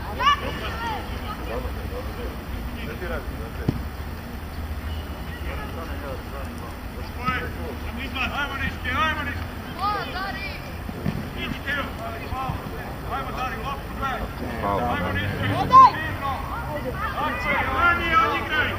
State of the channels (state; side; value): identical; both; correlation 1.00